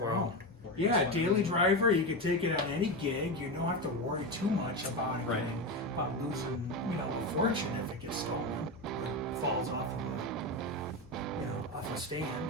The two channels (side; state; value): both; normal; correlation 0.17